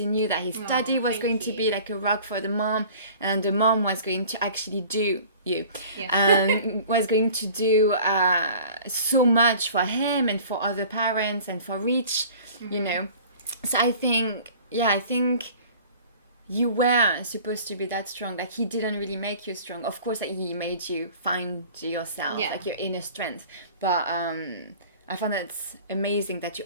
knew that his daddy was going to be like a rock for the mom, and the mom was going to actually do was going to do so much for him and for other parents and for Rich, you know. So I think you were supposed to be that strong. Like, he didn't really make you strong. Of course, like, he made you find yourself, like your inner strength. But I found that it's amazing that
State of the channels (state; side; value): inverted; both; correlation -0.46